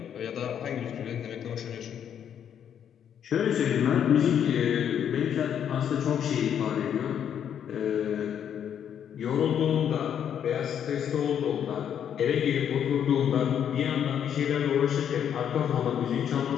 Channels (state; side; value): quieter; right; 8.9 dB